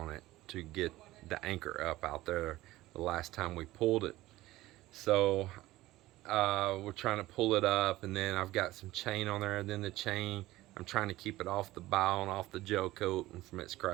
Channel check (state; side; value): quieter; left; 17.1 dB